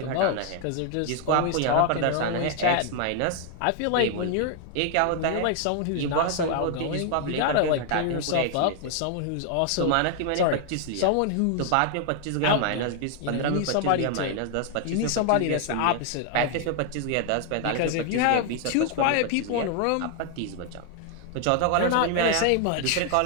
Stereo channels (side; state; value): both; different; correlation 0.00